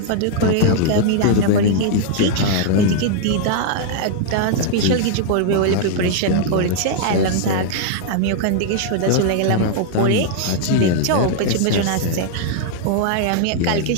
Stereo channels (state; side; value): different; both; correlation 0.00